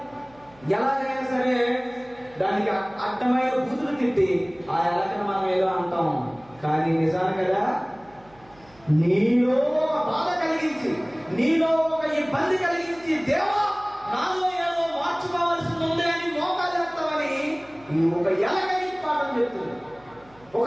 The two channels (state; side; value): noise; right; hum, 28 dB below the sound